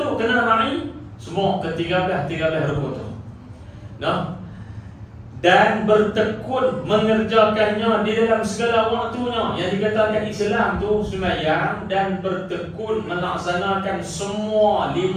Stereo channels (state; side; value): identical; both; correlation 1.00